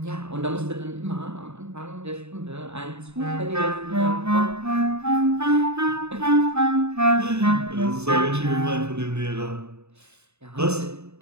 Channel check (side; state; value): left; late; 0.81 ms